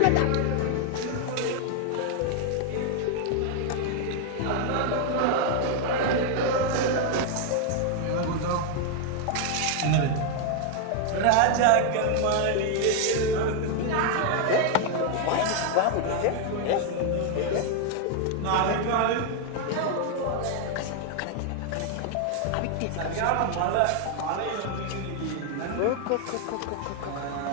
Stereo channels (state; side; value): different; both; correlation 0.00